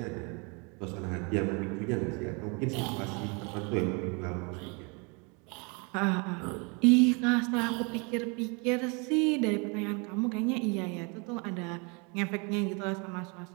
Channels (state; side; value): quieter; left; 32.0 dB